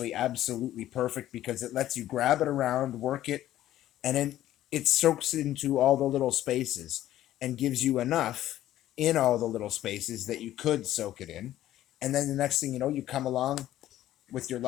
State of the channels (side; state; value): right; quieter; 13.4 dB